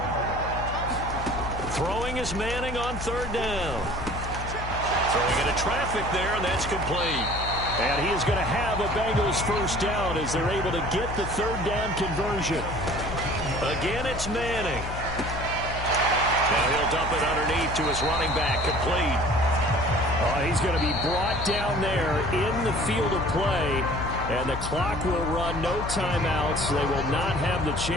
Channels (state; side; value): noise; left; hum, 7 dB below the sound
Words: Throwing is Manning on third down. Throwing into traffic there, and that's complete. And he is going to have a Bengals first down as they're able to get the third down conversion. Again, it's Manning. Now he'll dump it underneath to his running back, complete. He's going to be brought down there in the field of play, and the clock will run. No timeouts. They will not have the